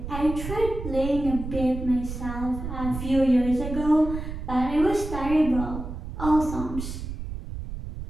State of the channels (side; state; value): right; noise; rumble, 7 dB below the sound